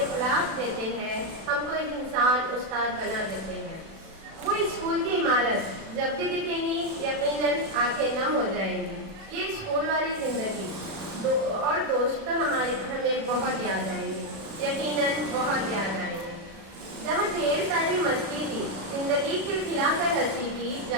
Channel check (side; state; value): left; late; 37 ms